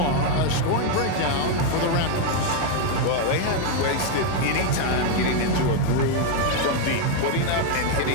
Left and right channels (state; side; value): different; both; correlation 0.01